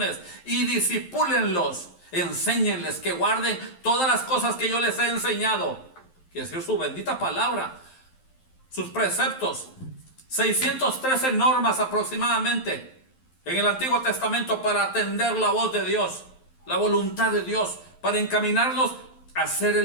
y discipúlenlos, enséñenles que guarden todas las cosas que yo les he enseñado, que es decir, su bendita palabra, sus preceptos, 613 normas aproximadamente en el Antiguo Testamento para atender la voz de Dios, la voluntad de Dios, para encaminarlos hacer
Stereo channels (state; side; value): late; right; 11 ms